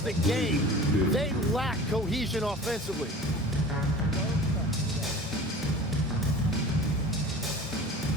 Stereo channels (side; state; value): both; normal; correlation 0.39